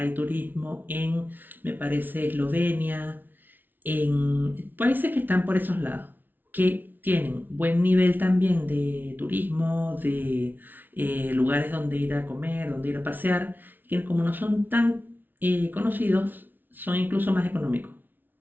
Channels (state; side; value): late; left; 0.088 ms